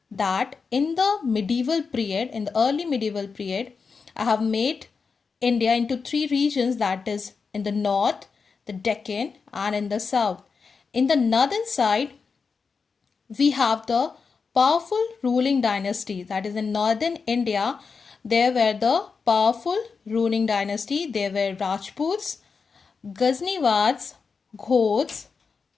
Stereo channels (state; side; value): quieter; right; 5.2 dB